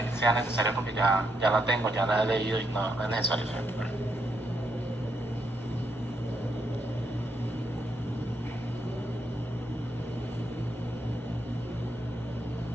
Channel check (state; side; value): normal; both; correlation 0.78